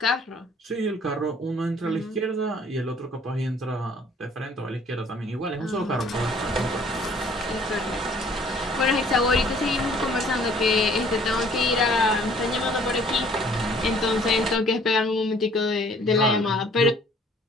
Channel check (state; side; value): normal; both; correlation 0.56